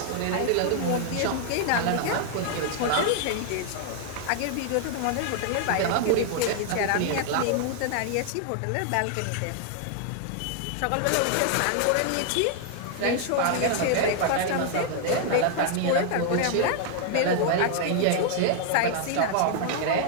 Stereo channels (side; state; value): both; different; correlation 0.00